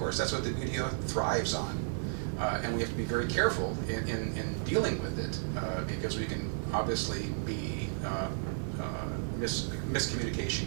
that's what the media thrives on, and we have to be very careful in dealing with it, because we can obviously be miscommunication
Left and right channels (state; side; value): silent; left; digital silence